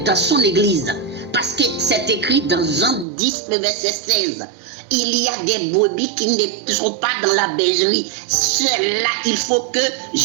dans son église. Parce que c'est écrit dans Jean 10, le verset 16. Il y a des brebis qui ne sont pas dans la bergerie. Ceux-là, il faut que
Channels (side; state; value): left; drops out; at 3.1 s